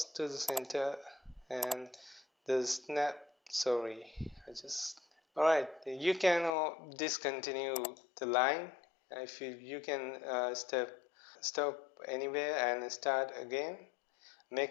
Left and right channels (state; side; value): drops out; right; at 6.5 s